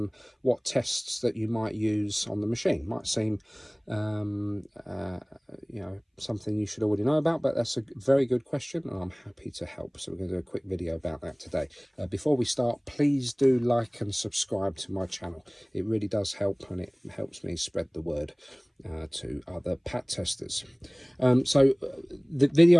tests that you might use on the machine. Might seem you know, something you should already know about, but that's a very good question and I'm happy to help. So we're going to do a quick video about that today. Before we start, please do like and subscribe to my channel. It really does help, and it helps me spread the word to other pat testers. The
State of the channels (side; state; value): both; identical; correlation 1.00